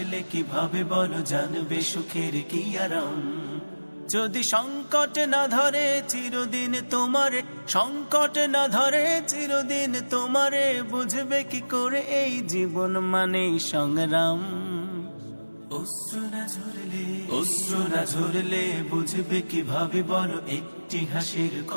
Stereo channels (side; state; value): both; inverted; correlation -1.00